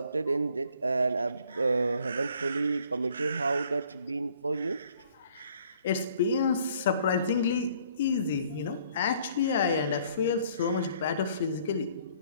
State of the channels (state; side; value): inverted; both; correlation -0.60